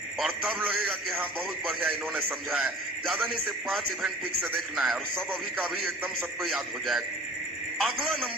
और तब लगेगा कि हाँ बहुत बढ़िया इन्होंने समझा है। ज्यादा नहीं, सिर्फ 5 इवेंट ठीक से देखना है और सब अभी का अभी एकदम सबको याद हो जाएगा। अगला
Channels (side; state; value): both; normal; correlation 0.44